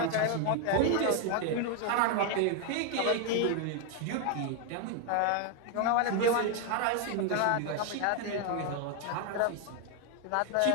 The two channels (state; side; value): different; both; correlation 0.01